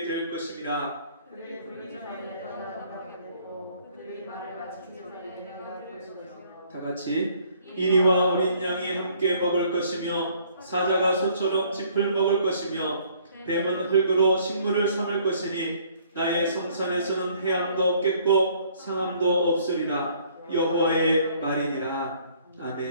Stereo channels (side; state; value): both; inverted; correlation -0.60